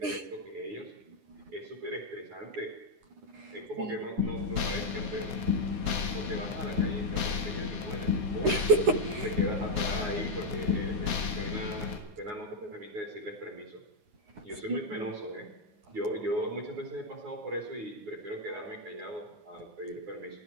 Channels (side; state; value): left; late; 9.8 ms